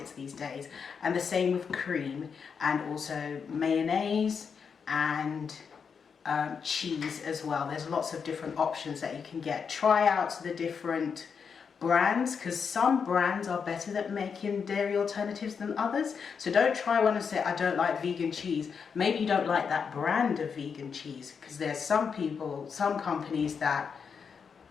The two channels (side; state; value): right; quieter; 6.2 dB